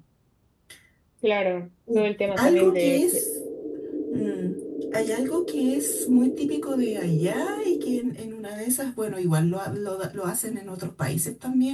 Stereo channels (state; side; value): identical; both; correlation 1.00